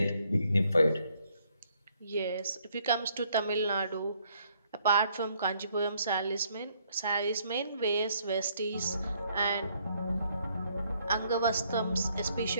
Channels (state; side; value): inverted; both; correlation -0.68